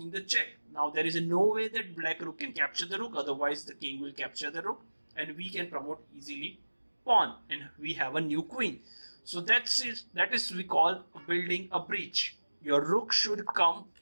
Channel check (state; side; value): inverted; both; correlation -1.00